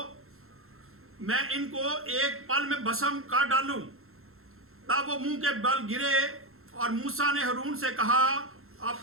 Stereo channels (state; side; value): late; left; 0.62 ms